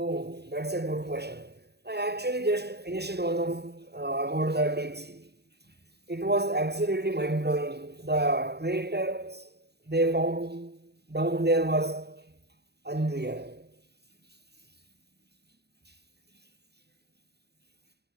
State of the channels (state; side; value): late; left; 0.48 ms